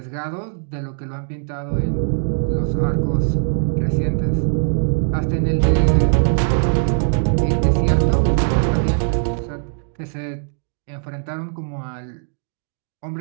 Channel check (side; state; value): left; silent; 57 dB below the other